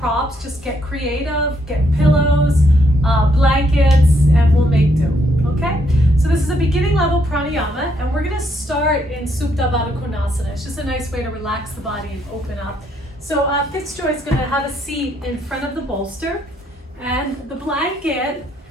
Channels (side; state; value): both; normal; correlation 0.73